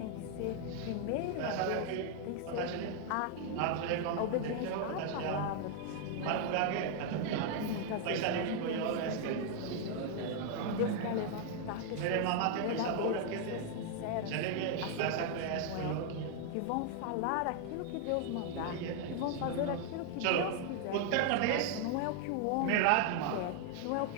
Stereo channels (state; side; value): different; both; correlation 0.00